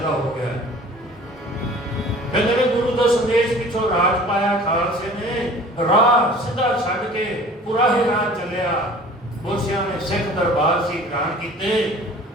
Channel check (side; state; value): both; normal; correlation 0.46